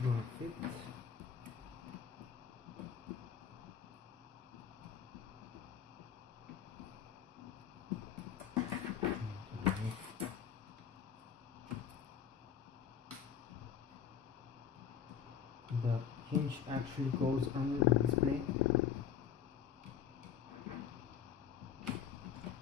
gonna fit. The hinge actually goes under the display.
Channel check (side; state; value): right; quieter; 8.2 dB